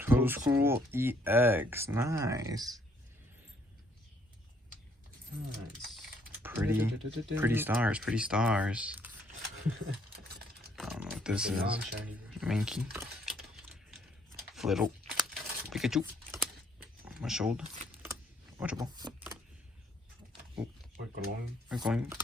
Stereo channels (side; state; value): both; normal; correlation 0.67